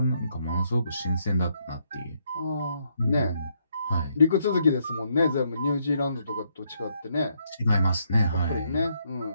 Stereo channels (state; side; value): inverted; both; correlation -0.75